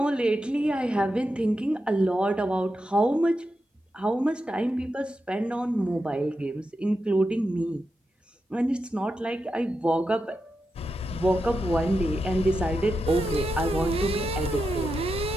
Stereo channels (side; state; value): both; normal; correlation 0.88